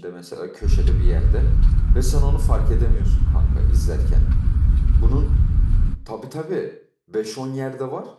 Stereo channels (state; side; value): identical; both; correlation 1.00